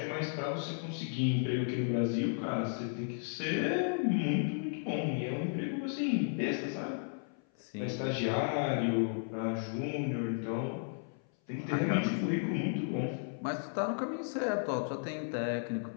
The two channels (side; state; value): right; silent; 55 dB below the other